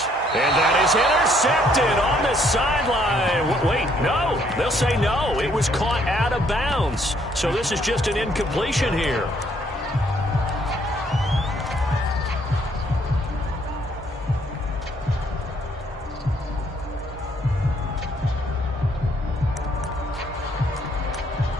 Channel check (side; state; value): both; normal; correlation 0.67